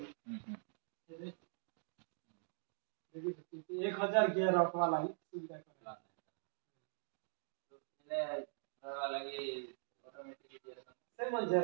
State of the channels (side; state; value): left; silent; digital silence